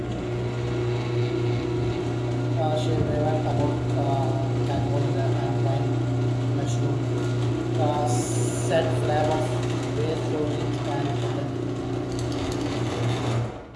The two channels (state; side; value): identical; both; correlation 1.00